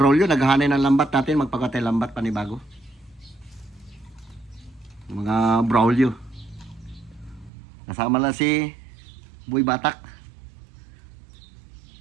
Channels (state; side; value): drops out; left; at 7.5 s